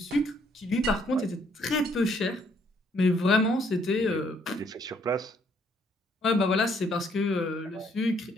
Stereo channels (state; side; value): normal; both; correlation 0.67